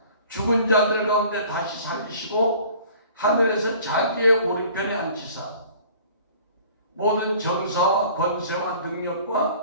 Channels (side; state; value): both; inverted; correlation -0.50